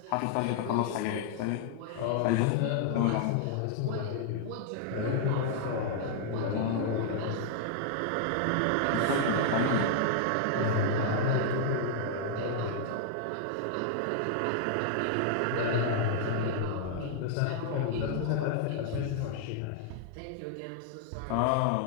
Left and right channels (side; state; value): both; different; correlation -0.01